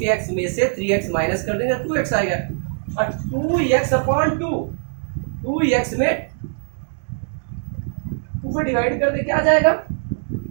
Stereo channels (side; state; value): left; silent; digital silence